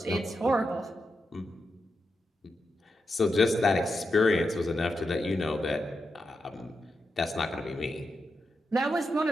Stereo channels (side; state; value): both; normal; correlation 0.87